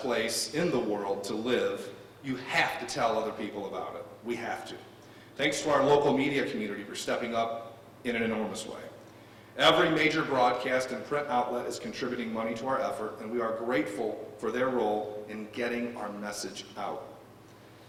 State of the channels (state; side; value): identical; both; correlation 1.00